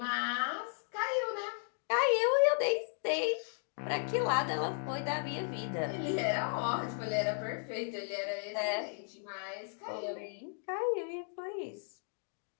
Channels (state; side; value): silent; right; 54 dB below the other